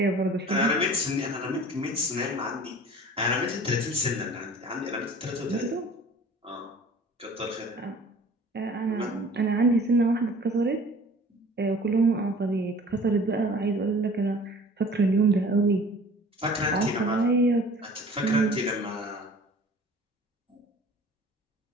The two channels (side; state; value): both; normal; correlation 0.46